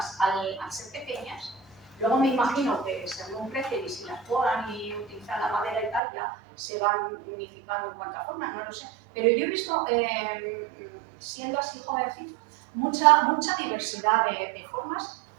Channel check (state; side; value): drops out; left; at 6.0 s